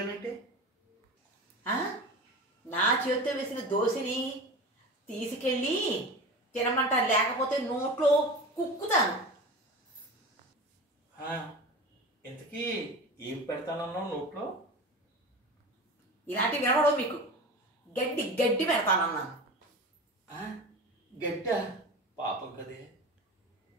నా చేతితో వేసిన దోశని తీసుకెళ్ళి తినమంటారు, లేకపోతే నోట్లో కుక్కుతాను. ఇంతకీ ఏం పెడతానన్నావు నోట్లో? ఇలాంటివి వినవడం మీకు. గడ్డి గడ్డి పెడతానన్నాను. గడ్డ? పాపం కదే.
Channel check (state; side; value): normal; both; correlation 0.31